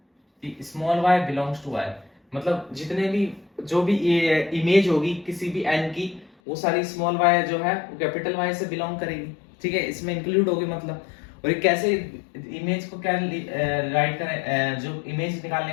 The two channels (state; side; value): drops out; right; at 6.3 s